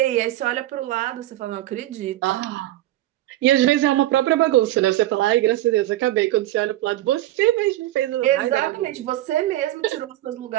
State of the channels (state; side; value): quieter; left; 15.1 dB